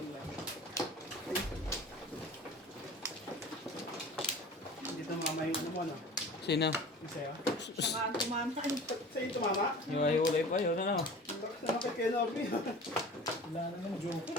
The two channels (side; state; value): both; normal; correlation 0.40